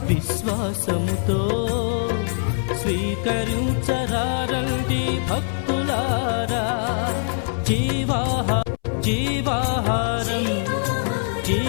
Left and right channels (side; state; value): right; silent; 62 dB below the other